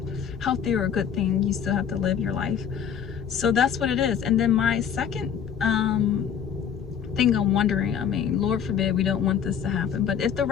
healthy or a good thing. You still have to live your life. So that's what it is. And then my second thing I'm wondering, I mean, Lord forbid we don't want this to happen, but if the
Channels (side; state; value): right; quieter; 8.1 dB